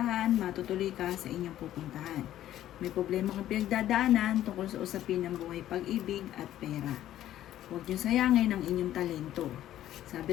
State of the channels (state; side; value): quieter; right; 12.7 dB